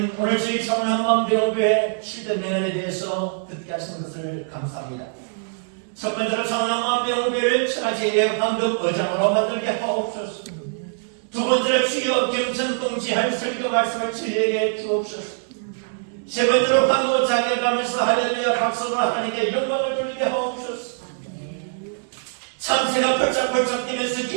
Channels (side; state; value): left; silent; digital silence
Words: 오늘 저희 청남만병교회 7대 명언에 대해서 듣게 하시는 것을 감사합니다. 첫 번째로 청남만병교회를 천하제일의 황금 의장으로 만들게 하옵소서. 두 번째로 주여 경천동지할 설교 말씀을 저희에게 주옵소서. 세 번째로 황금 자격하면서 할렐루야 박수로 하나님께 영광을 돌리게 하옵소서. 참새가 펄쩍펄쩍 뛰면서